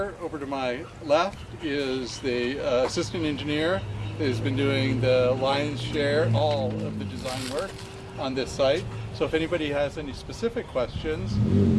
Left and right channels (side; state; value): both; identical; correlation 1.00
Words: over to my left, is the assistant engineer that has been doing the lion's share, all of the design work on this site. So if anybody has any specific questions,